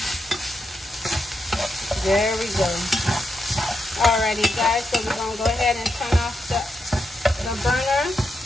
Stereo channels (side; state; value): both; normal; correlation 0.84